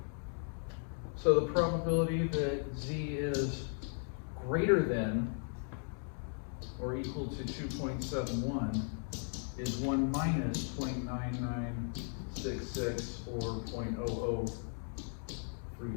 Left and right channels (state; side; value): silent; right; 53 dB below the other